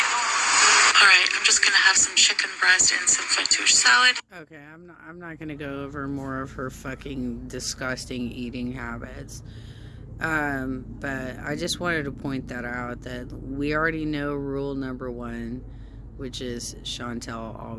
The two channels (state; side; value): identical; both; correlation 1.00